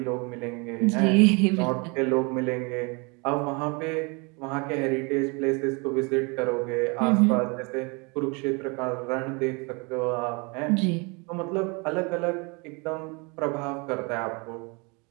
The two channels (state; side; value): quieter; left; 30.1 dB